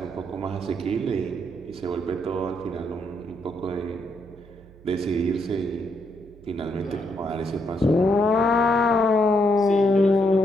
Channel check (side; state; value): right; noise; hum, 23 dB below the sound